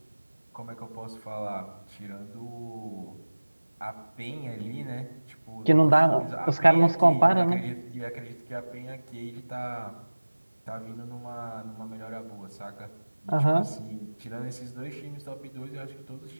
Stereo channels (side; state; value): both; inverted; correlation -1.00